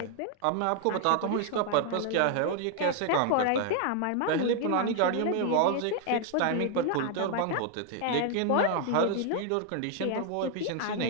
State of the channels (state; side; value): different; both; correlation 0.00